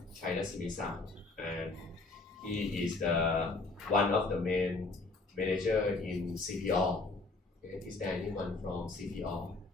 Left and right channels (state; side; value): quieter; right; 3.5 dB